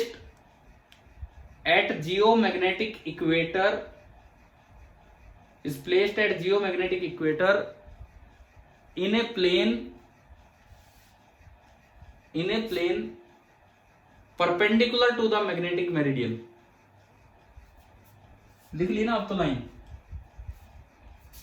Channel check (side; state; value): both; identical; correlation 1.00